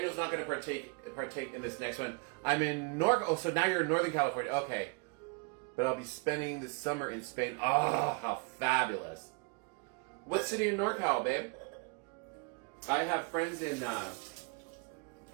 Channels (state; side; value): quieter; left; 33.3 dB